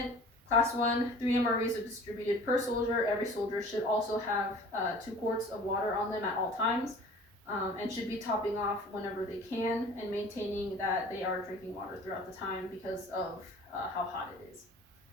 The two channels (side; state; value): both; normal; correlation 0.46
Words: Class 1, 3 MREs are distributed per soldier. Every soldier should also have 2 quarts of water on them at all times, and should be topping off whenever they can and maintaining that they are drinking water throughout the time because of how hot it is.